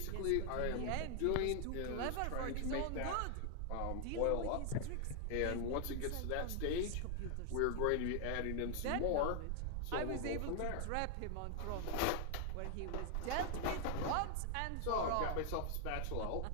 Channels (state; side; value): different; both; correlation 0.00